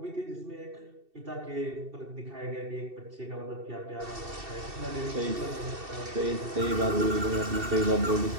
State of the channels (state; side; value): late; left; 2.7 ms